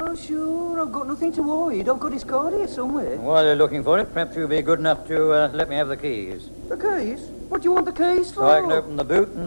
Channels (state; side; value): inverted; both; correlation -1.00